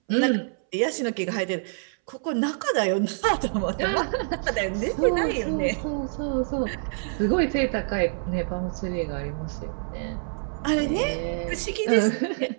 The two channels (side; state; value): left; silent; 61 dB below the other